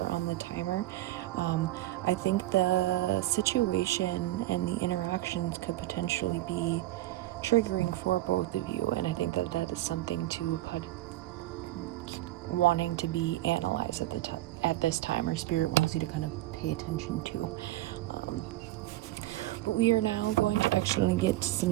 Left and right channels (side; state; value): left; quieter; 16.2 dB